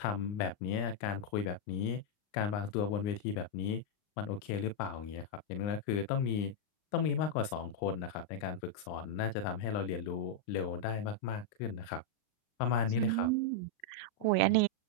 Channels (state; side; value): late; right; 39 ms